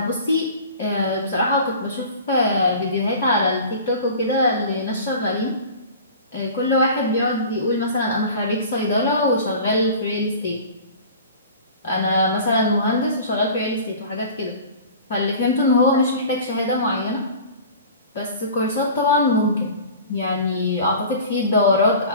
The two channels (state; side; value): inverted; both; correlation -0.41